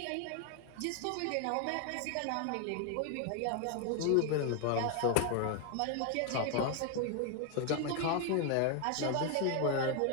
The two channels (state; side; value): different; both; correlation 0.01